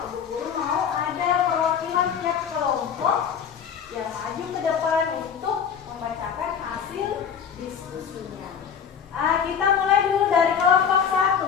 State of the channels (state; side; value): quieter; right; 7.5 dB